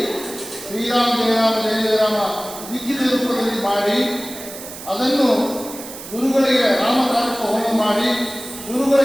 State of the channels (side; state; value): right; noise; hiss, 13 dB below the sound